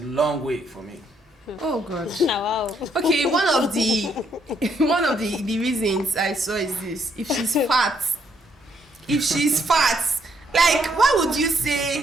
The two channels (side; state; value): both; normal; correlation 0.72